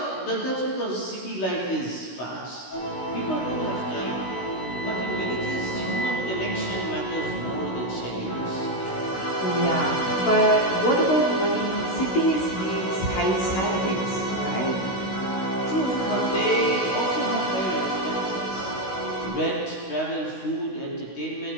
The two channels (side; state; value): right; late; 16 ms